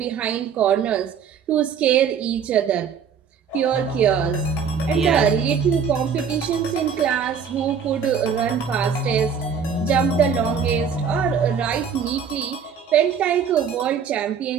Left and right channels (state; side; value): quieter; left; 6.8 dB